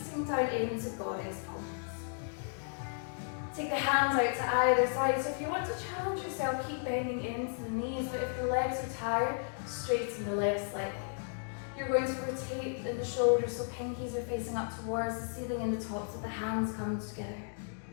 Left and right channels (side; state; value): right; silent; digital silence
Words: down into Goddess pose. Take the hands out to either side. So if you want to challenge yourself, keep bending into the knees. But if the legs are tired, straighten the legs slightly. You're going to rotate the shoulders so pinkies are facing up towards the ceiling and the tops of the hands come together.